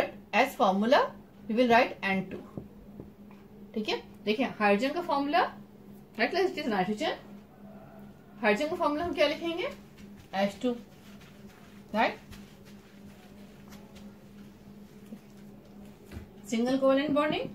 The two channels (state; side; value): identical; both; correlation 1.00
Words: as formula we will write N2, ठीक है। देखिए हाइड्रोजन का formula, right class, it is nitrogen, hydrogen का formula हम क्या लिखेंगे, H2, right. Single covalent bonding,